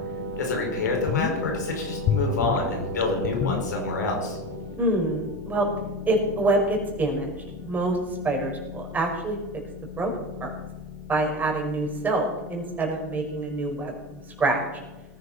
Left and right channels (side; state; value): both; normal; correlation 0.26